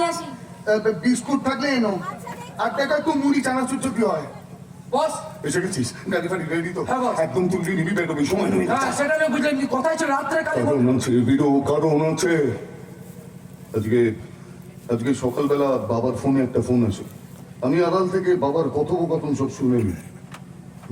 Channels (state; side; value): identical; both; correlation 1.00